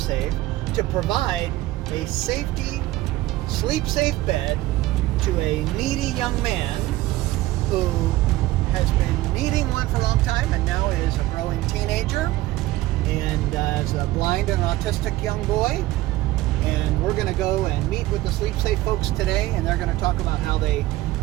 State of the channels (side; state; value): left; quieter; 17.2 dB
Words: to provide a SleepSafe bed to a needy young man who has been needing one for a long time and now is a growing teenager and is a blind and autistic young boy. And we're going to go and meet with the SleepSafe folks today, and they're going to talk about how they